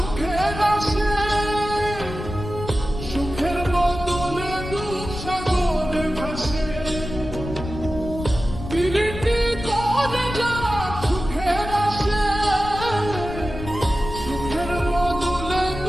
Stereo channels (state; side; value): noise; left; rumble, 9 dB below the sound